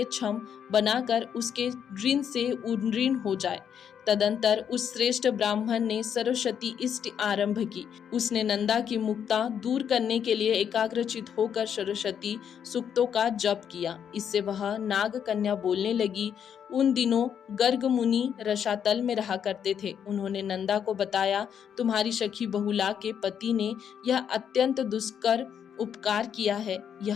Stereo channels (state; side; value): quieter; right; 8.3 dB